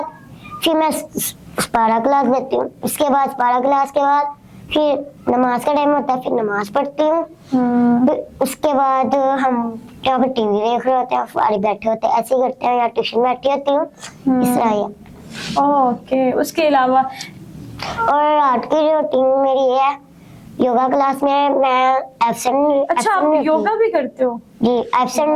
फिर मैं पारा क्लास लेती हूँ। उसके बाद पारा क्लास के बाद फिर नमाज का टाइम होता है, फिर नमाज पढ़ती हूँ। उसके बाद हम जहाँ पर टीवी देख रहे होते हैं, फारिग बैठे होते हैं, ऐसे ही करते हैं, या ट्यूशन बैठी होती हूँ, इस तरह ही। ओके, उसके अलावा और रात की रूटीन मेरी ये है, योगा क्लास में मैं एब्सेंट। अच्छा, आप योगा भी करते हो? जी, एब्सेंट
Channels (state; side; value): identical; both; correlation 1.00